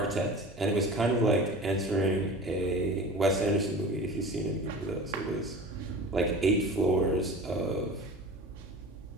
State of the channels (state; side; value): normal; both; correlation 0.37